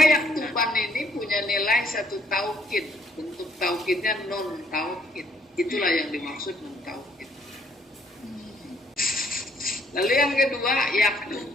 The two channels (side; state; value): both; normal; correlation 0.65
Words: yaktuban ini punya nilai 1 taukid. Bentuk taukidnya non taukid. Itulah yang dimaksud non taukid. Lalu yang kedua,